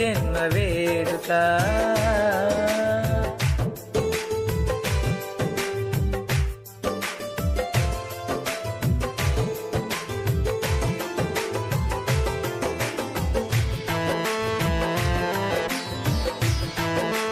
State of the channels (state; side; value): identical; both; correlation 1.00